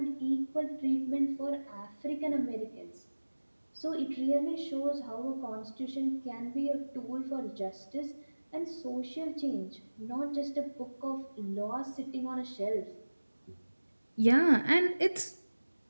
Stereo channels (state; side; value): inverted; both; correlation -1.00